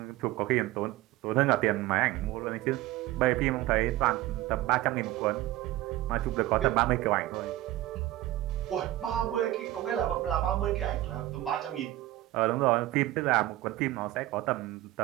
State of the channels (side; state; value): left; quieter; 16.1 dB